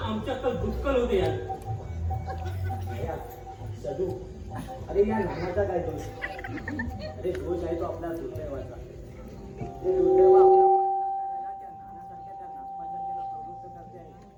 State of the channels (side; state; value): both; identical; correlation 1.00